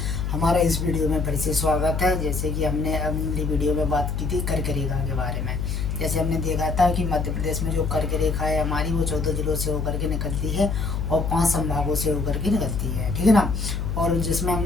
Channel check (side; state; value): left; noise; hum, 2 dB below the sound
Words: हमारा इस वीडियो में फिर से स्वागत है। जैसे कि हमने अपनी वीडियो में बात की थी कर्क रेखा के बारे में। जैसे हमने देखा था कि मध्य प्रदेश में जो कर्क रेखा है हमारी, वो 14 जिलों से होकर के निकलती है और 5 संभागों से होकर के निकलती है, ठीक है ना। और जिसमें